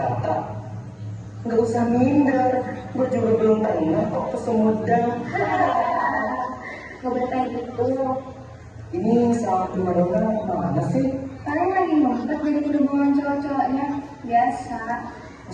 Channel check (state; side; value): identical; both; correlation 1.00